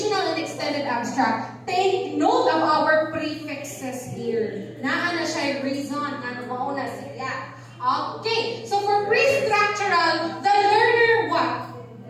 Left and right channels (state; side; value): identical; both; correlation 1.00